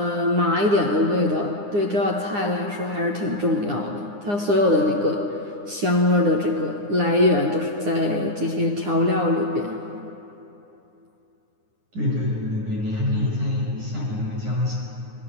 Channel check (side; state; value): left; late; 9.8 ms